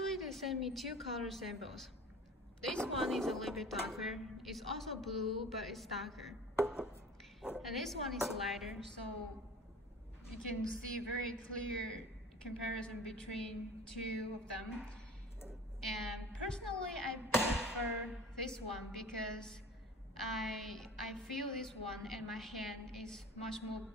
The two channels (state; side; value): normal; both; correlation 0.41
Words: they sent me 2 color samples. This one is a little bit darker. It's also blue, but it's darker. And this one is lighter, so you can see very clear comparison between 2 of them. And personally, I prefer this one because I feel this one and my hand is much more